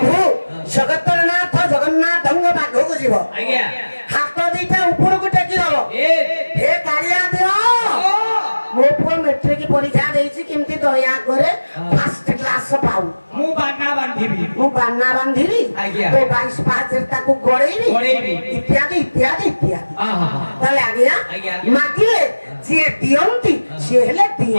ଜଗତର ନାଥ ଜଗନ୍ନାଥଙ୍କ ପାଖକୁ ଯିବ ହାତ ଦିଟା ଉପରକୁ ଟେକି ଦବ ଏ କାଳିଆ ଦିଅ ମୋ ପୁଅ ମେଟ୍ରିକ ପରୀକ୍ଷା ଦେଇଛି କେମିତି ଦୟା করে ଫାଷ୍ଟ କ୍ଲାସ ପାଉ ମୁଁ ବାନା ବାନ୍ଧିବି ମୁଁ ବାନା ବାନ୍ଧିବି ତ 22 ପାହାଚରେ ତାକୁ ଗଳେଇବି ଇତ୍ୟାଦି ଇତ୍ୟାଦି ଇତ୍ୟାଦି ତାହେଲେ ଆଜ୍ଞା ମାଗିଲେ ଯିଏ ଦିଅନ୍ତି ସିଏ ହେଲେ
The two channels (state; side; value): inverted; both; correlation -1.00